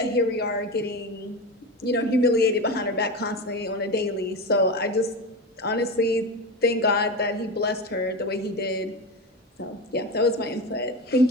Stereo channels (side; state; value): both; normal; correlation 0.22